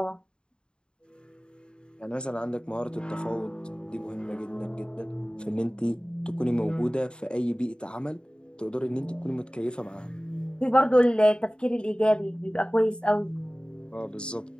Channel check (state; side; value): late; right; 0.051 ms